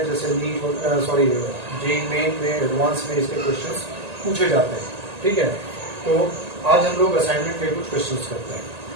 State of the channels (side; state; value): left; late; 1.9 ms